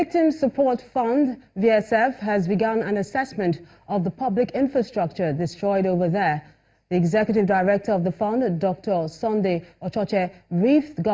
Support Fund, VSF, has begun an assessment of the public infrastructure destroyed over there. The executive director of the fund, Dr. Sunday Ochoche, briefed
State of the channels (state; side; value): identical; both; correlation 1.00